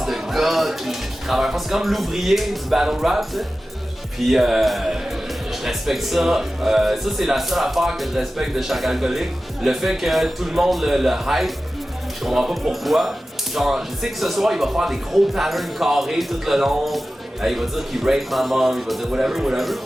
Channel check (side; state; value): both; normal; correlation 0.95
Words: de gars qui travaille pas. C'est comme l'ouvrier du battle rap, t'sais. Puis je respecte ça. Ça, c'est la seule affaire que je respecte de chaque alcoolique. Le fait que tout le monde le hype, je comprends pas pourquoi. Genre, je sais que ce soir, il va faire des gros patterns carrés tout le long. Il va dire qu'il rape ma mom, il va dire whatever.